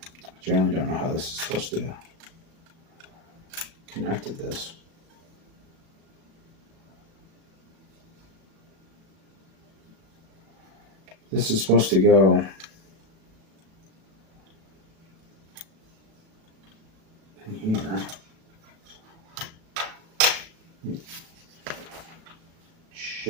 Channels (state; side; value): late; left; 37 ms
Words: I generally don't know how this is supposed to connect to this. This is supposed to go